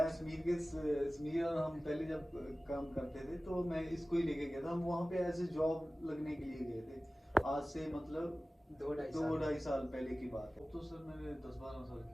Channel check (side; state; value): both; normal; correlation 0.97